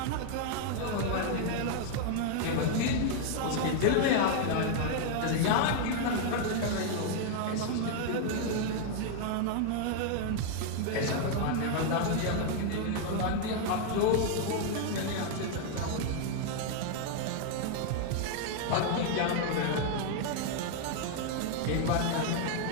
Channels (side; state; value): both; different; correlation 0.00